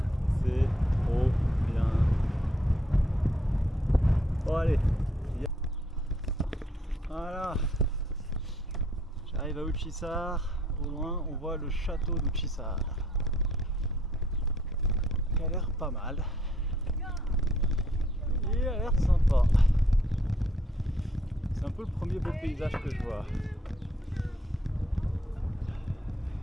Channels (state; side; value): normal; both; correlation 0.67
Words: C'est trop bien. Bon, allez. Voilà. J'arrive à Uçhisar. Au loin, on voit le château d'Uçhisar. qui a l'air pas mal. Il a l'air sympa. C'est un peu le premier beau paysage que je vois